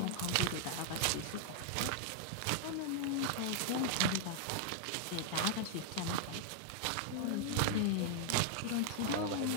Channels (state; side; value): different; both; correlation -0.01